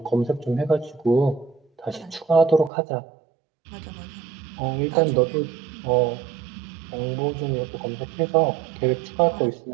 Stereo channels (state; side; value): drops out; left; at 2.7 s